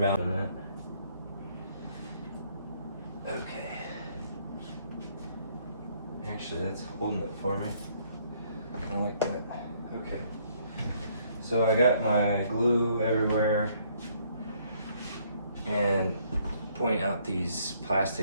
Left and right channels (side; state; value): both; inverted; correlation -0.66